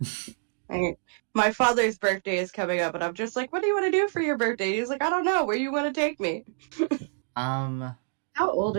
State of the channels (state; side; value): silent; left; digital silence